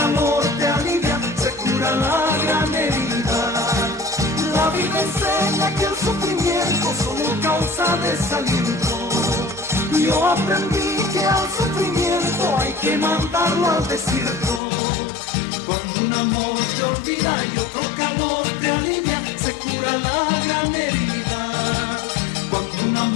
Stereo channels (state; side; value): drops out; right; at 14.6 s